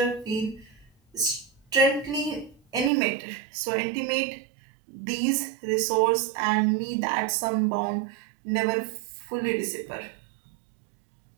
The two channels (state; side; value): drops out; left; at 2.9 s